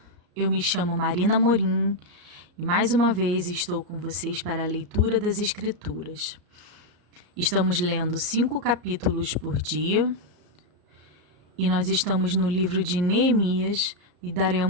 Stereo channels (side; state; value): left; late; 34 ms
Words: Eu me chamo Marina Morim e mais uma vez estou com vocês para a leitura das Escrituras. Estamos lendo 5 capítulos por dia e nós estamos no livro de Neemias e